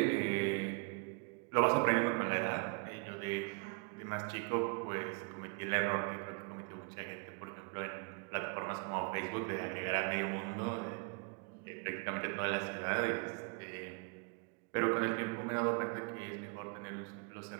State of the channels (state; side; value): quieter; left; 33.5 dB